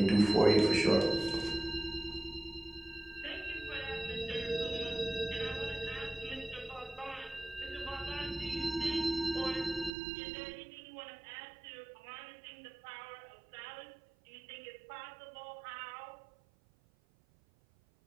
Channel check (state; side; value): drops out; left; at 9.9 s